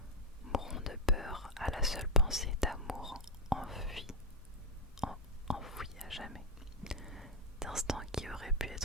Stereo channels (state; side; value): normal; both; correlation 0.04